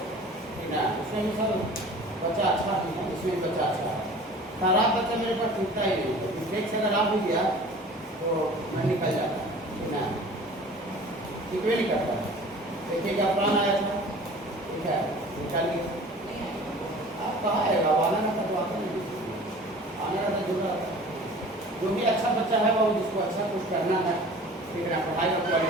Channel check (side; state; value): both; normal; correlation 0.44